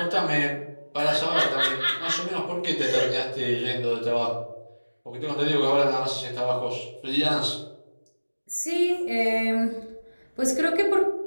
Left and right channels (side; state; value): both; inverted; correlation -1.00